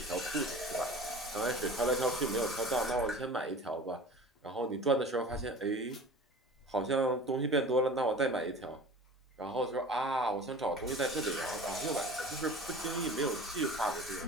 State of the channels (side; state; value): both; normal; correlation 0.40